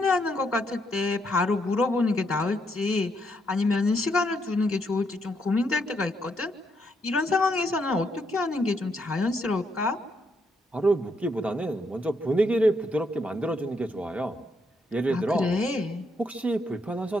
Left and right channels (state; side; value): normal; both; correlation 0.76